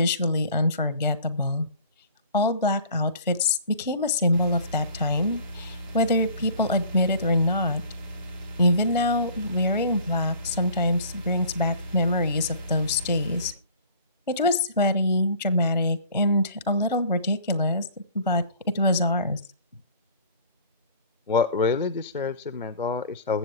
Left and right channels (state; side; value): inverted; both; correlation -0.48